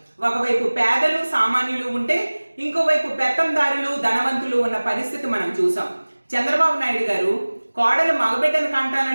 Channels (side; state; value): both; inverted; correlation -1.00